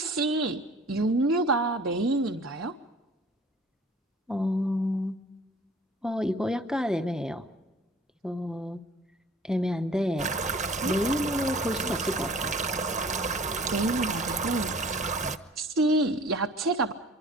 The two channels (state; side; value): normal; both; correlation 0.49